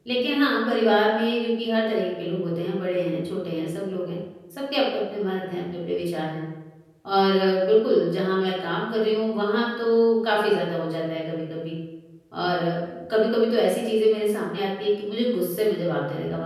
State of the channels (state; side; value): identical; both; correlation 1.00